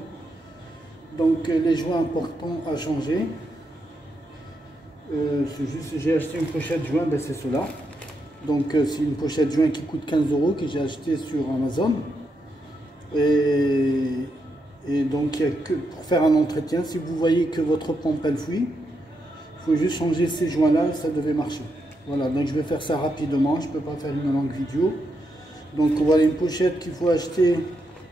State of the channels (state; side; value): normal; both; correlation 0.82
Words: Donc les joints importants à changer, j'ai acheté une pochette joint, ben, c'est cela. Donc c'est une pochette joint qui coûte 15 € que j'ai acheté sur Amazon. Et donc, il y a que pour faire un entretien, si vous voyez que votre pompe elle fuit, il faut juste changer ces joints-là et ça devait marcher. Voilà, donc je vais faire ça rapidement, je ne peux pas faire une longue vidéo. Donc voilà une pochette qu'il faut acheter